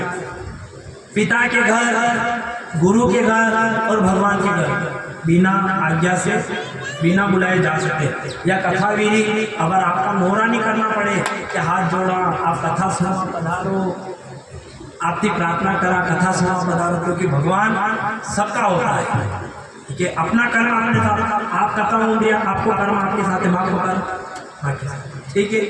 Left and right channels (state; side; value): identical; both; correlation 1.00